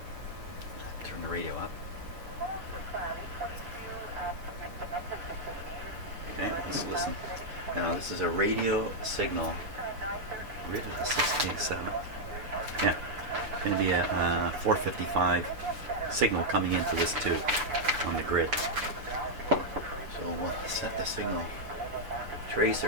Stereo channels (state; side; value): late; left; 7.0 ms